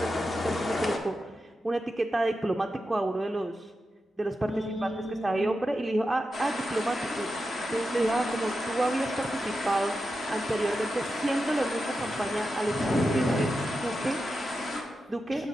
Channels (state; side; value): normal; both; correlation 0.90